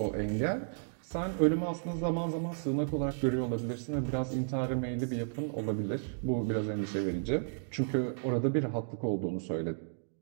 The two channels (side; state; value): left; silent; digital silence